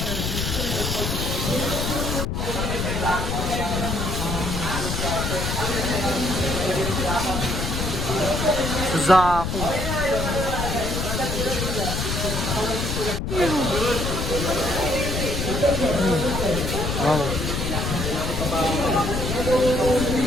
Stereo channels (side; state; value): left; noise; rumble, 2 dB below the sound